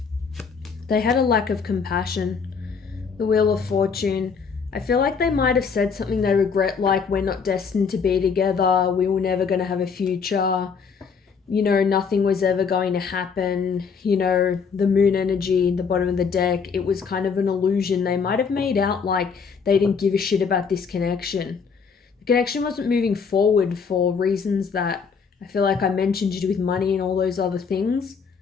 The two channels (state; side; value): quieter; right; 5.8 dB